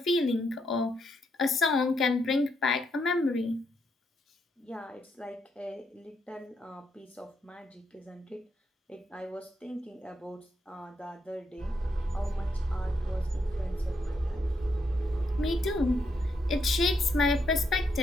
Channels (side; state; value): both; normal; correlation 0.78